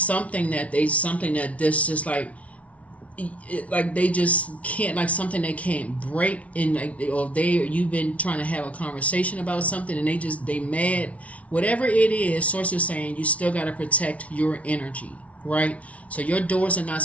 that this just like they just can't, like something they can't break in, you've been trying to have a conversation about something and they mad, whatever it is. Source is saying you still got to protect your energy, right? So your doors are not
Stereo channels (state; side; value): late; right; 0.065 ms